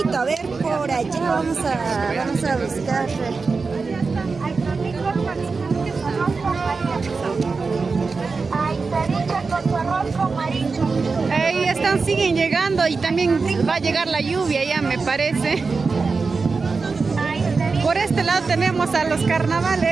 a ver, por allá vamos a buscar. Ahí están, siguen llegando y también va a llegar la lluvia ya, me parece. Por este lado tenemos a los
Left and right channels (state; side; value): quieter; left; 4.4 dB